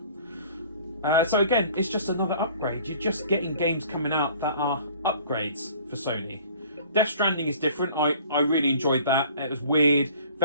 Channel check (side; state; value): both; inverted; correlation -0.50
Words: So again, it's just another upgrade. You're just getting games coming out that are upgrades for Sony. Death Stranding is different. I really enjoyed that. It was weird,